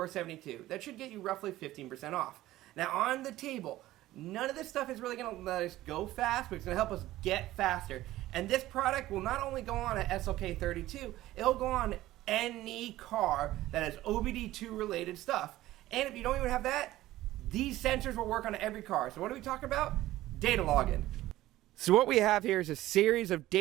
That should get you roughly 15% off. Now on the table, none of this stuff is really going to let us go fast, but it's going to help us get faster. And this product will not only go on a SLK32, it'll go on any car that has OBD2 related stuff. And if you don't even have that, these sensors will work on every car. So what are we talking about? Data logging. So what we have here is a series of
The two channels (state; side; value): quieter; left; 15.7 dB